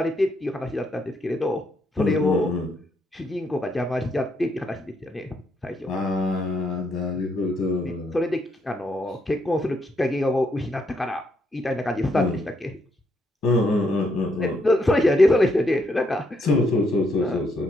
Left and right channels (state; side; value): normal; both; correlation 0.75